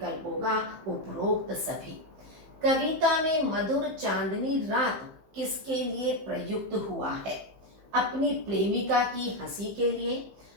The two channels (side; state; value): left; late; 15 ms